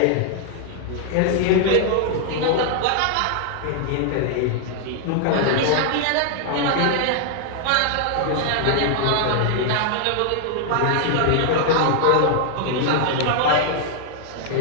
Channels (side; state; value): both; different; correlation 0.00